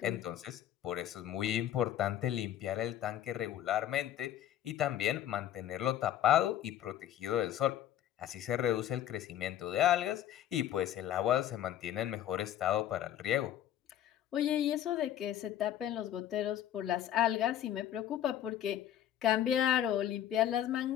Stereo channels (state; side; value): quieter; right; 11.4 dB